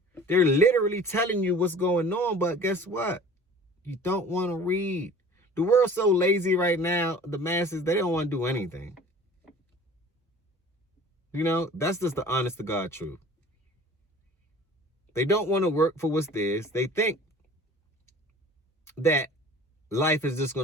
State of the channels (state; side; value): normal; both; correlation 0.45